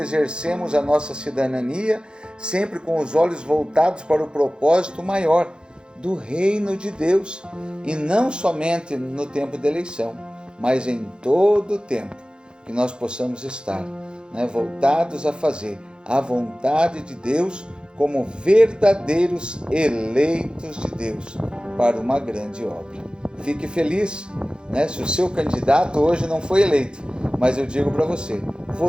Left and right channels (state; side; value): late; left; 0.049 ms